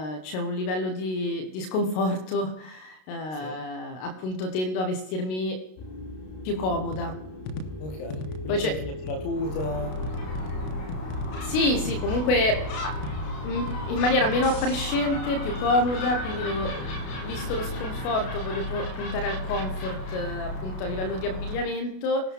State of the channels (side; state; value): right; late; 32 ms